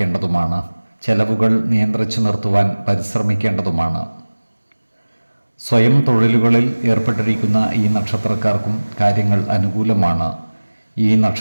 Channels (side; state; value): both; inverted; correlation -1.00